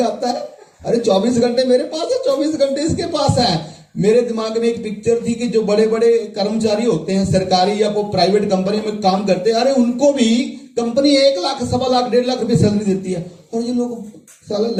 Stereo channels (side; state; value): both; identical; correlation 1.00